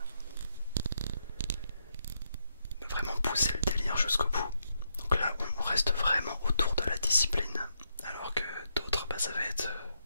vraiment pousser le délire jusqu'au bout. Donc là on reste vraiment autour de la discipline, alors que d'autres ça va être,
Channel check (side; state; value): both; inverted; correlation -0.80